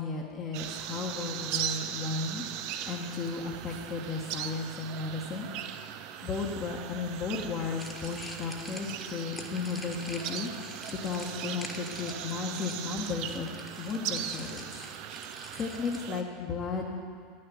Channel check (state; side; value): normal; both; correlation 0.14